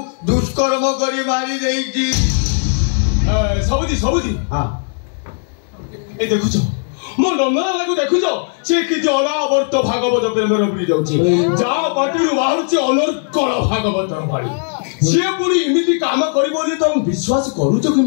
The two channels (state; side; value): silent; right; 65 dB below the other